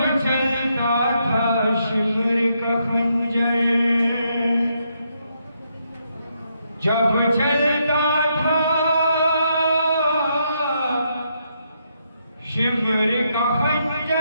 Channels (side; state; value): both; inverted; correlation -0.78